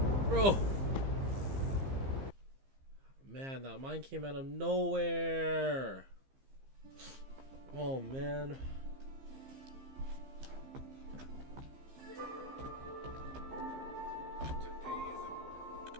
Bro. Man, that mine came out of nowhere. Oh, man.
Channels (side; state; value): left; late; 15 ms